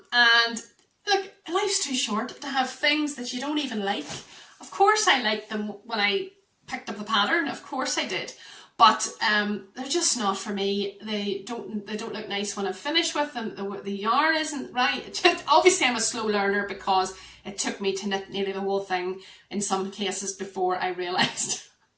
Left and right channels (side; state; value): both; identical; correlation 1.00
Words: look, life's too short to have things that you don't even like. Of course I liked them when I picked up the pattern, of course I did, but they're just not for me. They don't look nice when I'm finished with them. The yarn isn't right. Obviously I'm a slow learner because it took me to knit nearly the whole thing in some cases before I realised